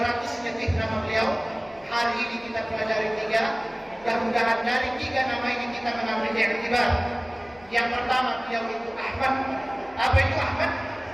lebih nama beliau. Hari ini kita pelajari 3. Mudah-mudahan dari 3 nama ini kita mengambil i'tibar. Yang pertama, beliau itu Ahmad. Apa itu Ahmad?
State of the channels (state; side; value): noise; left; rumble, 28 dB below the sound